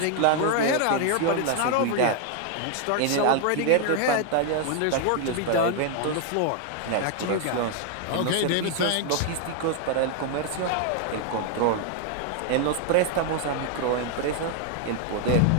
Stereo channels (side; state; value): both; different; correlation 0.00